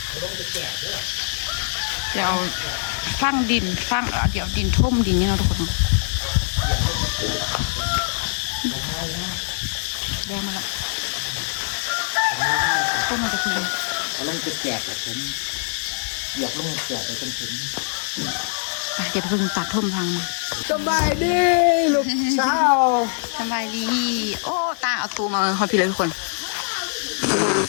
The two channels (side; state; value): right; silent; 63 dB below the other